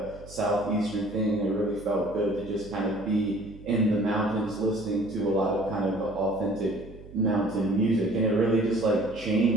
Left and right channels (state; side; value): noise; right; hum, 18 dB below the sound